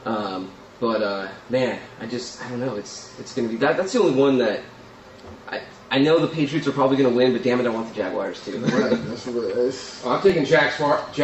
Man, I don't know. It's going to be that. That's the only one that. I know the Patriots are probably going to win, but damn it, I want the Jaguars too. Right, that's what it is. I'm taking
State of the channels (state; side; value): identical; both; correlation 1.00